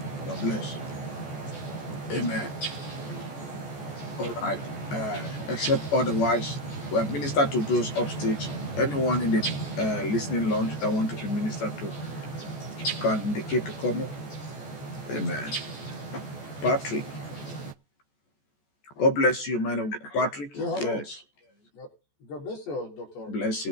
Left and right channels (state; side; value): late; right; 14 ms